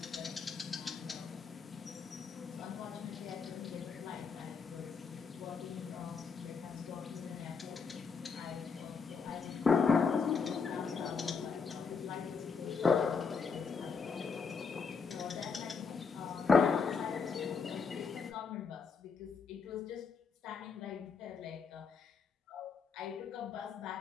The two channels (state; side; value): quieter; right; 5.4 dB